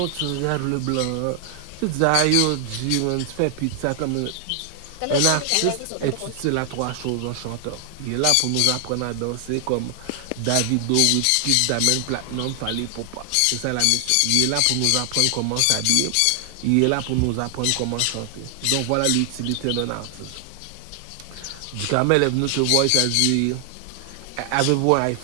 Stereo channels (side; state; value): both; different; correlation 0.00